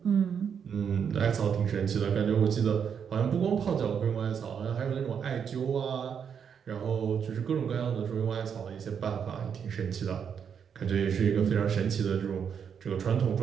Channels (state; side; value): quieter; left; 7.4 dB